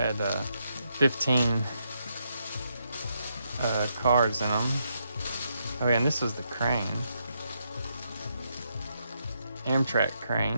15 cars in them. Oh yeah, and this was the crane. Amtrak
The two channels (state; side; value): inverted; both; correlation -0.79